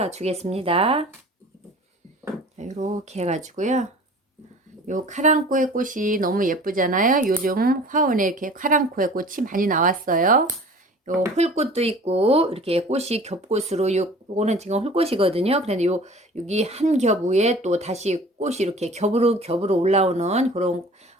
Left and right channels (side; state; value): both; normal; correlation 0.44